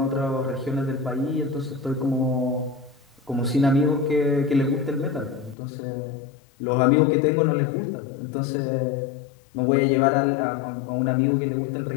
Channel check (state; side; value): drops out; right; at 5.6 s